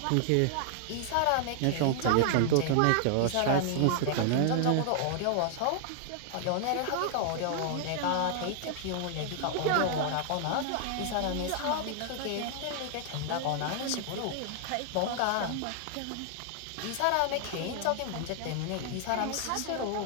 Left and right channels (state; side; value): different; both; correlation 0.00